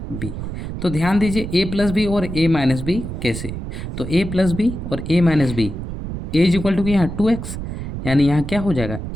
बी। तो ध्यान दीजिए ए प्लस बी और ए माइनस बी कैसे, तो ए प्लस बी और a minus b, a is equal to यहाँ 2x, यानी यहाँ क्या हो जाएगा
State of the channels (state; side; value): noise; right; rumble, 7 dB below the sound